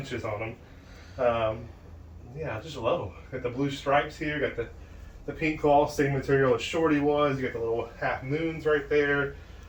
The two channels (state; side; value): identical; both; correlation 1.00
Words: on them. Yeah, I just love them. Got the blue stripes here. Got the pink claw, same material as Shorty was. You got the little half moons right there.